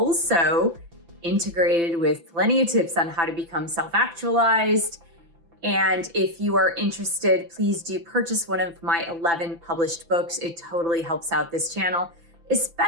integrated with plenty of tips on how to become self-actualized. And if you are interested, please do purchase one of my 11 published books. It totally helps out this channel,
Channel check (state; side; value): late; left; 5.9 ms